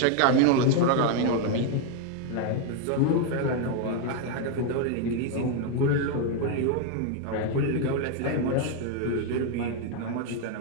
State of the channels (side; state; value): both; different; correlation 0.01